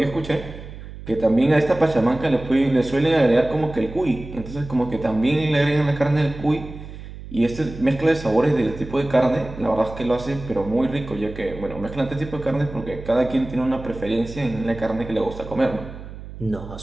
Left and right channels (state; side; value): noise; right; hum, 13 dB below the sound